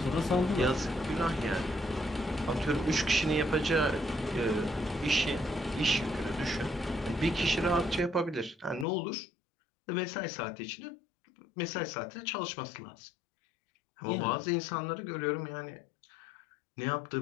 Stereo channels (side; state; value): right; drops out; at 8.8 s